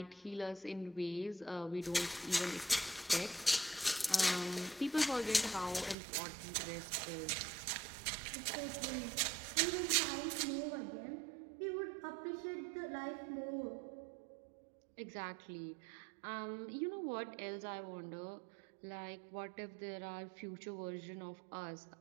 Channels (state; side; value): drops out; left; at 6.0 s